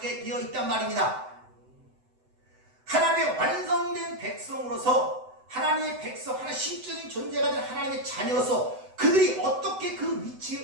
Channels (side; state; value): left; late; 7.9 ms